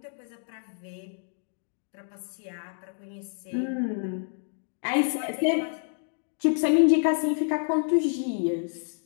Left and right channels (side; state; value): right; silent; 59 dB below the other